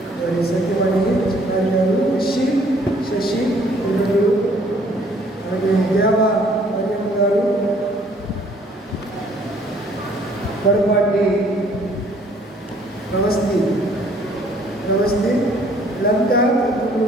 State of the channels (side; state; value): both; normal; correlation 0.60